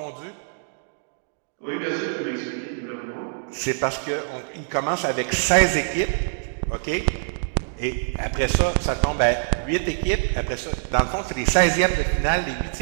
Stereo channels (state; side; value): silent; left; digital silence